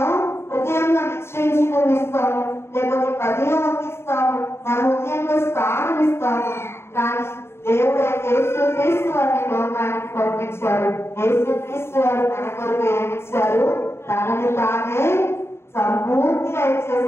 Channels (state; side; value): late; right; 0.12 ms